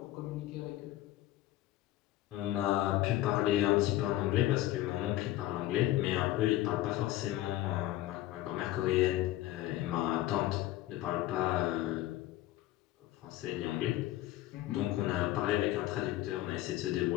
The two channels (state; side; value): quieter; right; 15.1 dB